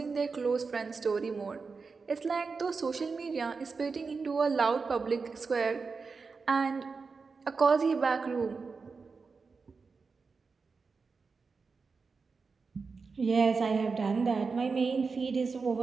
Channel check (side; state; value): left; quieter; 4.7 dB